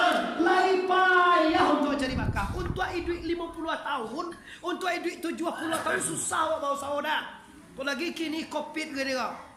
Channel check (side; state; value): both; identical; correlation 1.00